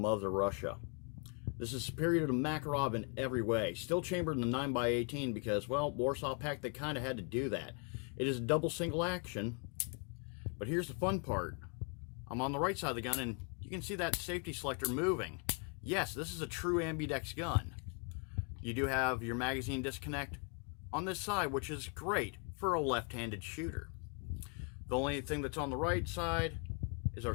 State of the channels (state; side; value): quieter; right; 37.8 dB